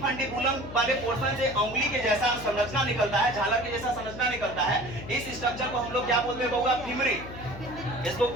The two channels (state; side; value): noise; left; hum, 12 dB below the sound